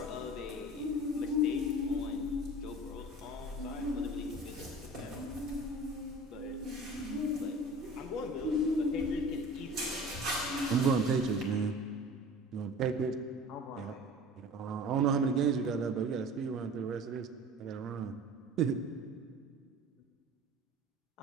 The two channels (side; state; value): both; normal; correlation 0.40